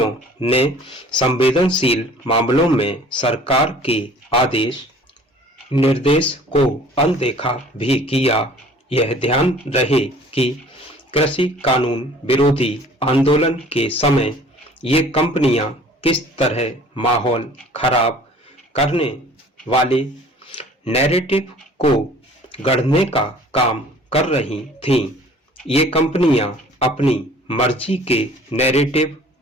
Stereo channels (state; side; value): normal; both; correlation 0.51